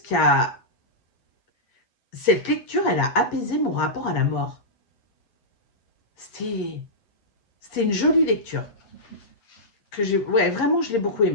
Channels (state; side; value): late; right; 8.7 ms